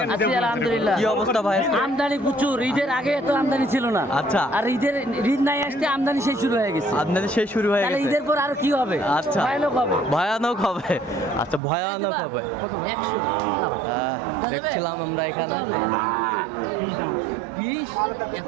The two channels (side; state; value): left; drops out; at 11.6 s